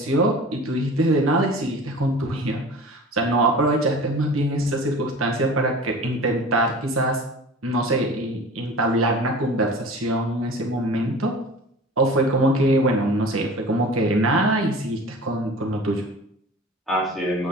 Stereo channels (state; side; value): normal; both; correlation 0.40